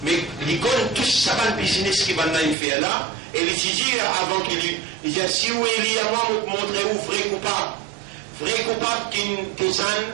Mais il connaît tout ça le business qui va faire là, et il dit avant qu'il dit si vous il y a moi vous montrer où vrai coupable qui est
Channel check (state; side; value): drops out; left; at 2.6 s